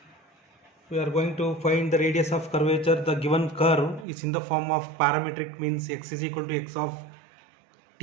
we are going to find the radius of curvature. The given curve is in the form of parametric, means x is equal to x of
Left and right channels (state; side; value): drops out; left; at 4.0 s